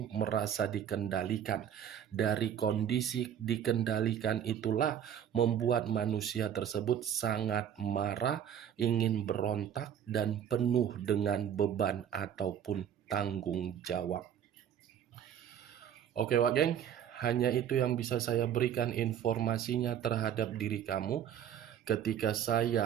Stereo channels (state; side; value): quieter; left; 9.4 dB